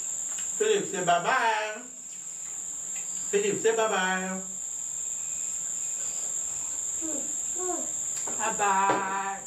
Philip, say bye-bye. Philip, say bye-bye. Bye-bye.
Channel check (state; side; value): identical; both; correlation 1.00